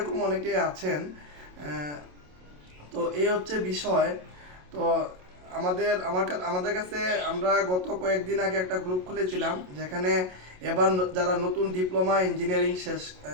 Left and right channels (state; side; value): late; left; 27 ms